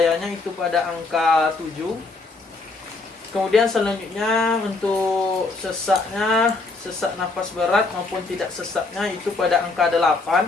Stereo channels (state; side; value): quieter; right; 3.6 dB